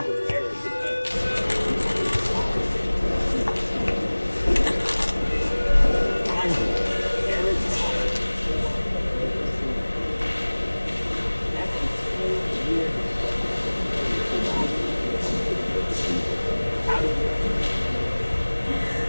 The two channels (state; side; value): inverted; both; correlation -1.00